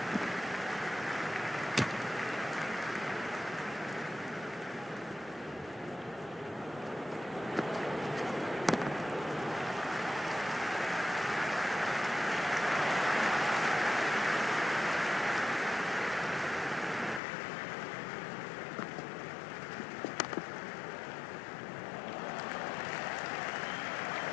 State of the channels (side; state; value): right; drops out; at 17.2 s